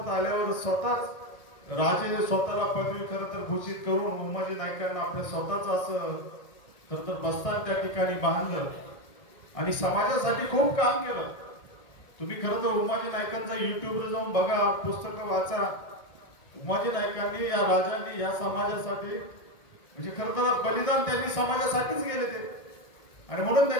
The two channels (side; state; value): right; late; 1.6 ms